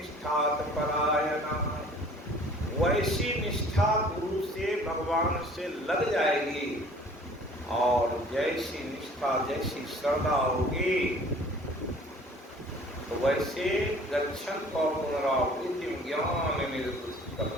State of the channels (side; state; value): both; normal; correlation 0.51